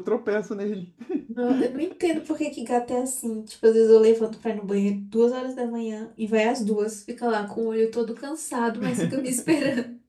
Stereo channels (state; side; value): identical; both; correlation 1.00